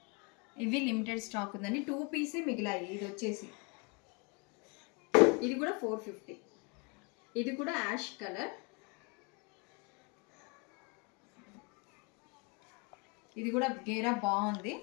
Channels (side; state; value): right; quieter; 31.1 dB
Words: ఇవి లిమిటెడ్ స్టాక్ ఉందండి, 2 పీసే మిగిలాయి. ఇది వచ్చేసి ఇది కూడా 450. ఇది కూడా యాష్ కలర్, ఇది కూడా గేరా బాగుంది,